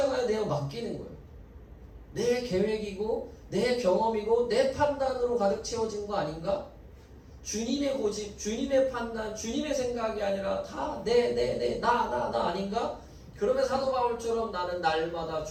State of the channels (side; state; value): both; identical; correlation 1.00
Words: 내어 맡기는 거예요. 내 계획이고 내 경험이고 내 판단으로 가득 채워진 거 아닌가? 주님의 고집, 주님의 판단, 주님의 생각이 아니라 다 나 아닌가? 그러면 사도 바울처럼 나는 날마다